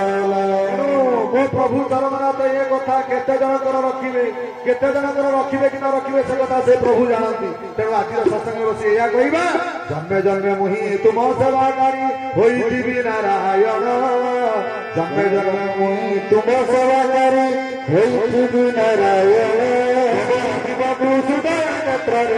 प्रभु चरणनाथ ये कथा केते जनकर रखिबे केते जनकर रखिबे कि न रखिबे से कथा से प्रभु जानती तेणु आज सत्संग बसी या कहबा जन्मे जन्मे मुहि तुम सेवाकारी होइथिबि नारायण जन्मे जन्मे मुहि तुम सेवाकारी होइथिबि नारायण जीवकु सुदया नेत्र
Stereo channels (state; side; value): identical; both; correlation 1.00